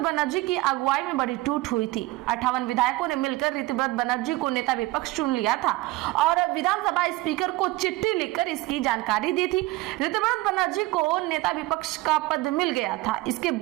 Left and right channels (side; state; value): left; quieter; 19.7 dB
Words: बनर्जी की अगुवाई में बड़ी टूट हुई थी। 58 विधायकों ने मिलकर ऋतव्रत बनर्जी को नेता विपक्ष चुन लिया था और विधानसभा स्पीकर को चिट्ठी लिखकर इसकी जानकारी दी थी। ऋतव्रत बनर्जी को नेता विपक्ष का पद मिल गया था। इसके